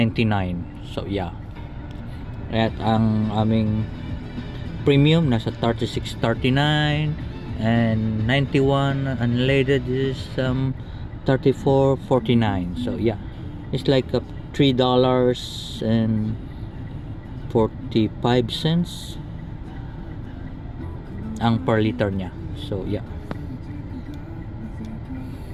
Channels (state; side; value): identical; both; correlation 1.00